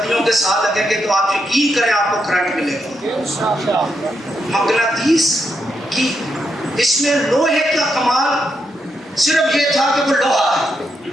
کے ساتھ لگیں گے تو آپ یقین کریں آپ کو کرنٹ ملے گا. مقناطیس کی اس میں لوہے کا کمال صرف یہ تھا کہ وہ لوہا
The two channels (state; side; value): normal; both; correlation 0.82